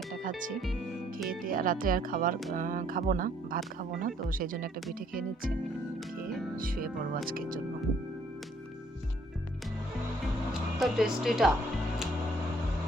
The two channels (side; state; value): both; normal; correlation 0.64